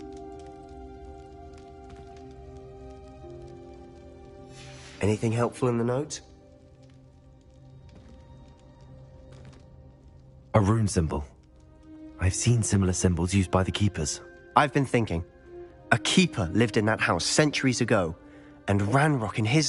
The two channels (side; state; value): both; identical; correlation 1.00